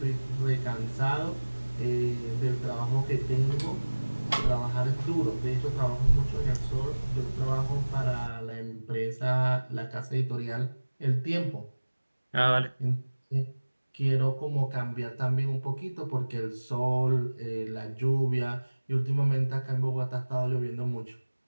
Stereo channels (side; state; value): both; inverted; correlation -1.00